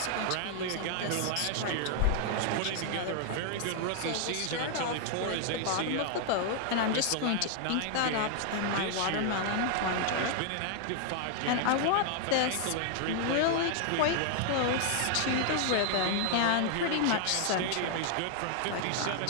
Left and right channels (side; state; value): both; different; correlation 0.00